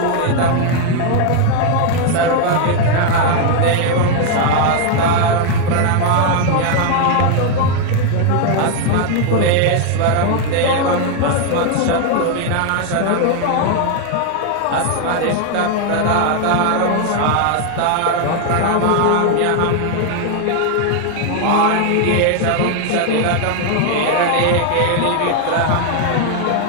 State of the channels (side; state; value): both; different; correlation 0.01